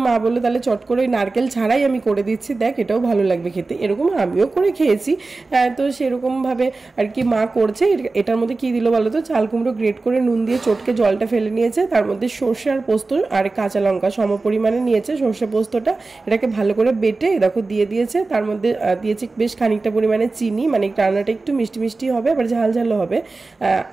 মা বললো তাহলে চট করে ওই নারকেল ছাড়াই আমি করে দিচ্ছি, দেখ এটাও ভালো লাগবে খেতে। এরকম আমিও করে খেয়েছি। তো সেরকমভাবে আর কি মা করছে। এটার মধ্যে কি দিল বলো তো, চাল কুমড়ো গ্রেট করে নুন দিয়ে চটকে জলটা ফেলে নিয়েছে, তার মধ্যে সর্ষে আর পোস্ত আর কাঁচা লঙ্কা সম পরিমাণে নিয়েছে, সর্ষে পোস্তটা এটাকে ভালো করে বেটে দেখো দিয়ে দিয়েছে। তার মধ্যে দিয়েছে বেশ খানিকটা পরিমাণে চিনি, মানে রান্নাটা একটু মিষ্টি মিষ্টি হবে, আবার ঝাল ঝালও হবে।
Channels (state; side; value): quieter; left; 3.6 dB